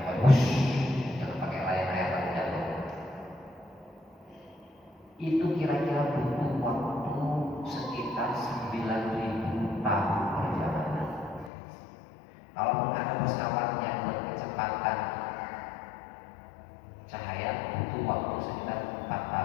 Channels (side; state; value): right; drops out; at 11.5 s